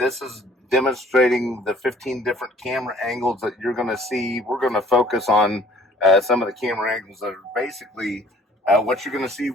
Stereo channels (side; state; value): both; normal; correlation 0.55